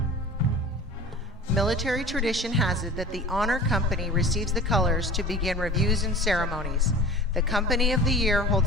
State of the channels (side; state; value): both; normal; correlation 0.39